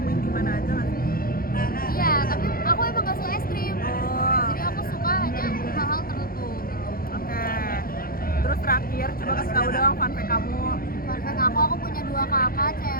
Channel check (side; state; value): right; late; 0.42 ms